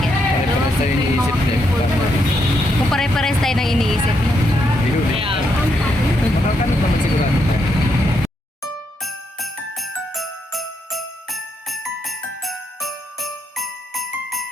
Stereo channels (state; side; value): normal; both; correlation 0.78